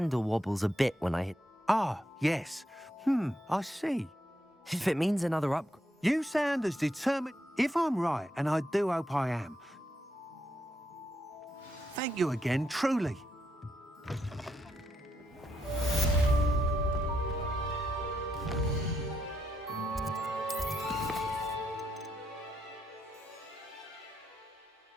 wobbles a bit when I hit... Ah, yes. I see. If it means another upgrade... You sound as determined... If I'm right, and I do hope I am... Thank you again, truly.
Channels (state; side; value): normal; both; correlation 0.80